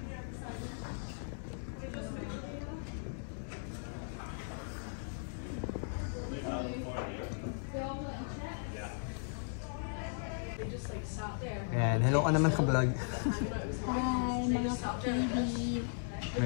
Ayan, hello ka naman sa vlog. Hi mga ka-KB.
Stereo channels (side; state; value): right; silent; digital silence